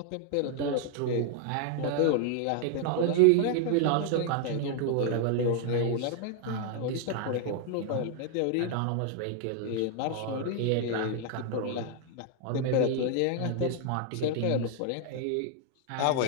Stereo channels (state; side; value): different; both; correlation 0.00